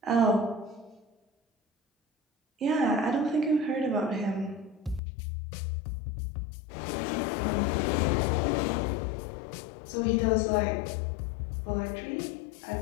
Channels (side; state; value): right; drops out; at 5.0 s